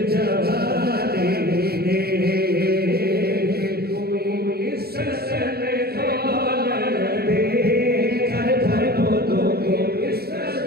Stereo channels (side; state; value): left; late; 0.46 ms